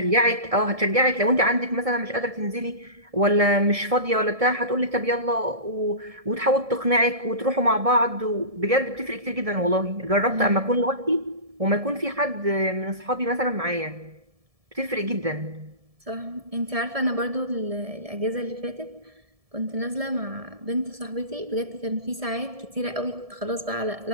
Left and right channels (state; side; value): late; left; 1.7 ms